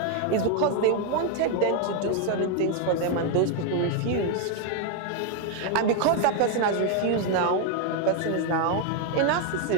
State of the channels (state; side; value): different; both; correlation 0.01